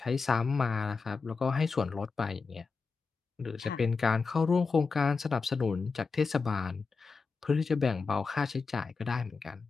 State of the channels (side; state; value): right; quieter; 4.7 dB